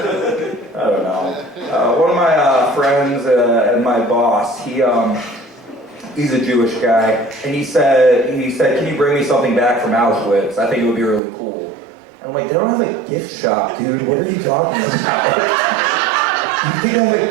I don't know. One of my friends and my boss, he's a Jewish guy, and he said, can you bring me something back from Auschwitz? I think it would be really cool. And I'm like, they don't have a gift shop, dude. What are you talking about? You think I have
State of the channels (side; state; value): left; drops out; at 11.2 s